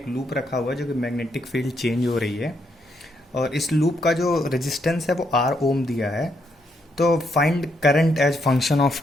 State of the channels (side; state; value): both; normal; correlation 0.77